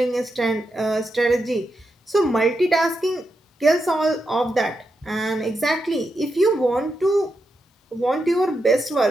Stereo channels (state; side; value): normal; both; correlation 0.86